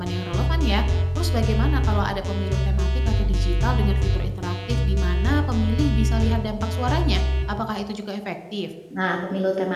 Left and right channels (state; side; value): identical; both; correlation 1.00